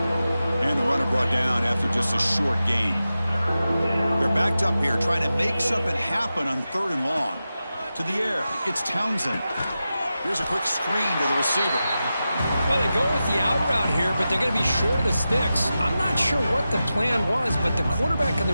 And the runner brought down after just a short gain. They're backed up here trying to make something happen on third and long. To the air, it's Townsend. Here's a quick screen to the receiver. Well, they go with the out route here, but they're going to be short of the sticks. I'm not sure what the plan was, but the quarterback and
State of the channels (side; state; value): both; inverted; correlation -0.92